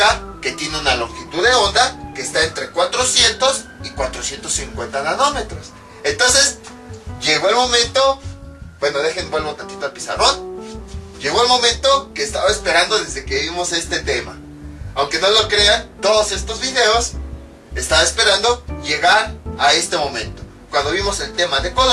que tiene una longitud de onda que está entre 400 y 450 nanómetros. Entonces, llegó el momento, bueno, vuelvo tantito al pizarrón. Llegó el momento que estaba esperando desde que vimos este tema. Aunque no lo crean, todos estos videos estaba esperando llegar a este momento. Cuando vimos el tema de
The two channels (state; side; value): identical; both; correlation 1.00